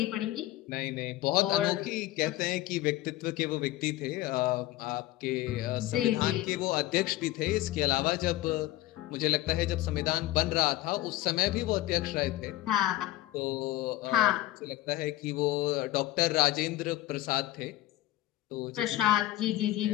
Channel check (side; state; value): right; quieter; 15.9 dB